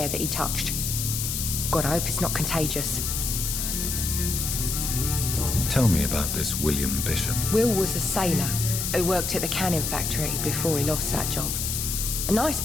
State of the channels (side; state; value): left; noise; hiss, 2 dB below the sound